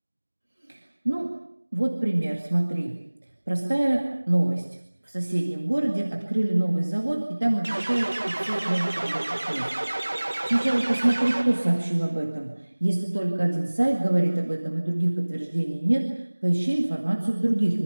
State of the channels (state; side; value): inverted; both; correlation -1.00